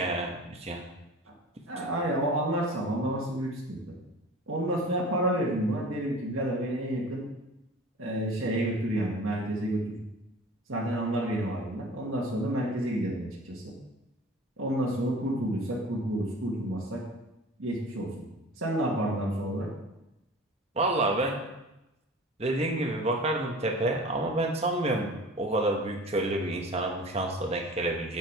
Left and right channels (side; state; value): both; normal; correlation 0.41